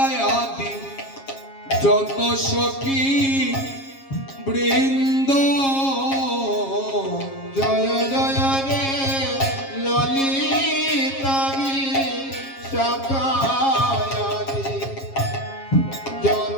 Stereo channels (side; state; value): right; late; 7.4 ms